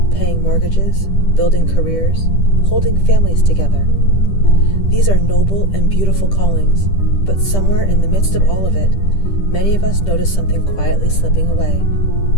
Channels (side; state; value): right; late; 10 ms